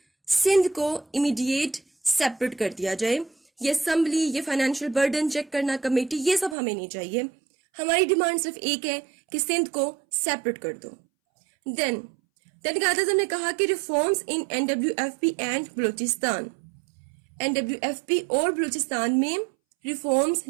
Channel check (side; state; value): left; drops out; at 6.6 s